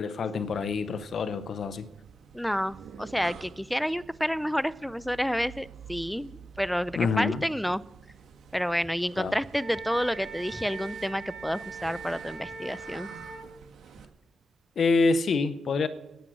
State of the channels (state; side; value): normal; both; correlation 0.92